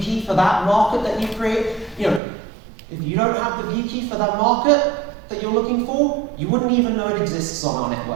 for that market that you create, if you don't have the view key for that market that you're looking for, you wouldn't even know it exists on our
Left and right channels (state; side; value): drops out; left; at 2.2 s